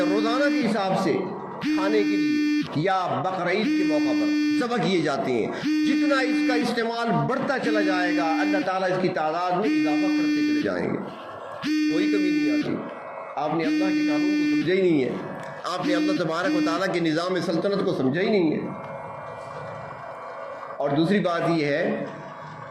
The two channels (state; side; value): identical; both; correlation 1.00